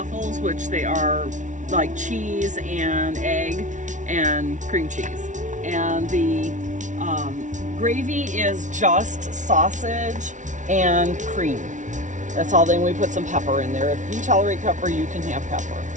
which they are like cheese and egg and cream cheese. And the gravy is just sausage and cream. That's all. Then we put some pepper in there. If you tolerate pepper, you can have pepper.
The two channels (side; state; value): left; late; 0.37 ms